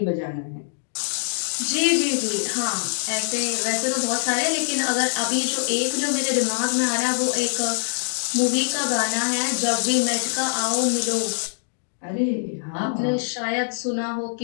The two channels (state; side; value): silent; right; digital silence